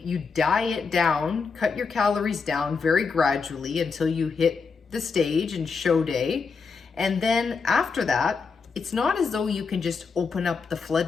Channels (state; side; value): quieter; right; 5.1 dB